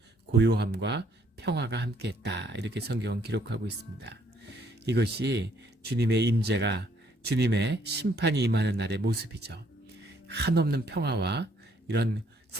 고요함과 평화가 함께했다. 이렇게 성경은 기록하고 있습니다. 이것이 주님의 임재가, 주님의 심판이 임하는 날의 모습이죠. 한없는 평화와 이런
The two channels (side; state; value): both; normal; correlation 0.66